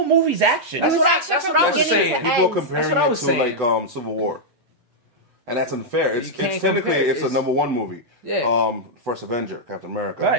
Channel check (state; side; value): late; left; 8.1 ms